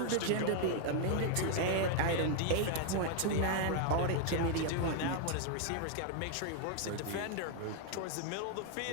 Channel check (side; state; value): both; different; correlation 0.00